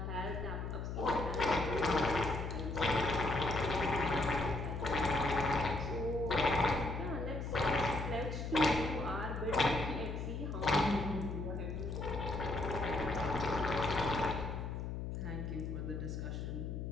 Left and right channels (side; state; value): left; noise; hum, 4 dB below the sound